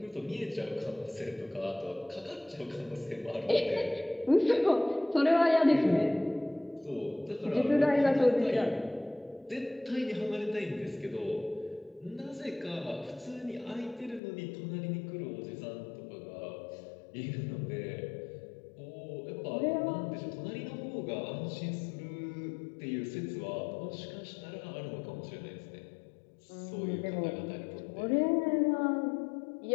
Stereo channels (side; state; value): right; drops out; at 14.2 s